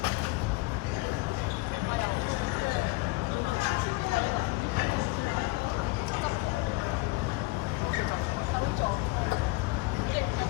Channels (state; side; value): quieter; right; 22.3 dB